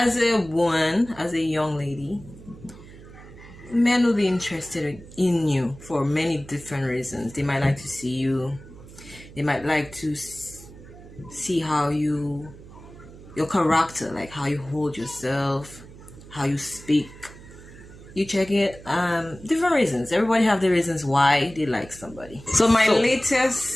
a woman, as a young lady, men will be interested in you for many different reasons. They might like to see you. They might like to see how your character, like how you hold yourself, how you speak. You check it. Different reasons. Everybody have their reasons why they like somebody. So my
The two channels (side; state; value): right; noise; hum, 18 dB below the sound